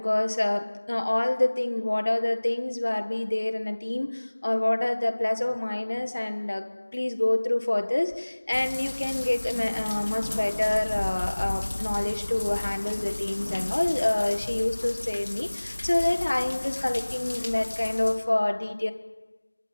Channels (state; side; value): inverted; both; correlation -1.00